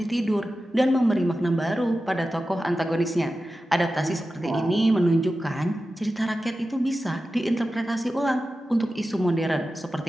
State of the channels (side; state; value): both; normal; correlation 0.93